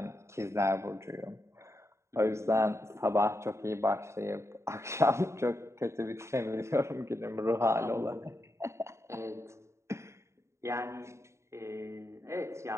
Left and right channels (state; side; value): late; left; 0.14 ms